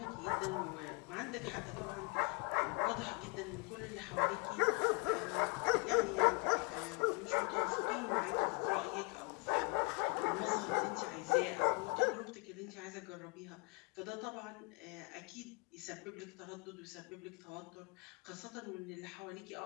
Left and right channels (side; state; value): right; quieter; 31.2 dB